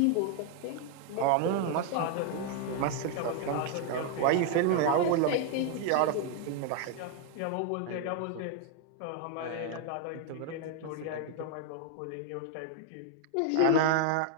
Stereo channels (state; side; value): different; both; correlation 0.01